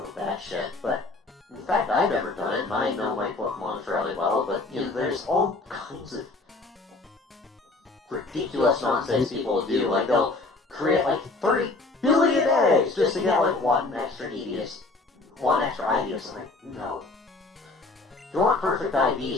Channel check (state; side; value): quieter; right; 3.3 dB